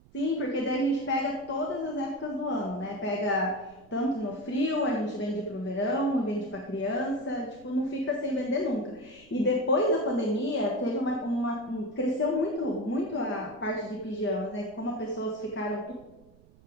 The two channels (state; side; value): noise; right; rumble, 26 dB below the sound